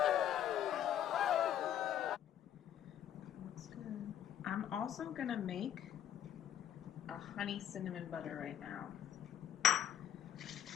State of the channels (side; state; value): right; quieter; 10.5 dB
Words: Looks good. I'm also gonna make a honey cinnamon butter right now.